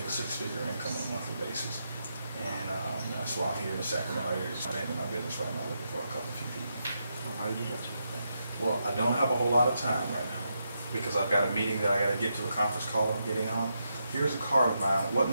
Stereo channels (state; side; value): inverted; both; correlation -0.83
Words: a 6-figure income on a monthly basis. And that's why I'm here in the Sacramento area, expanding my business right now, looking for a few people. How do you do that? Well, I don't have a whole lot of time right now because I've got a meeting that I got to get to, a conference call I'm getting on. Here's a card of mine. What